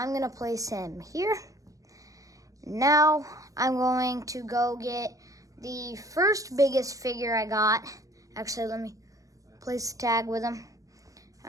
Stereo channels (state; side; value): late; left; 0.16 ms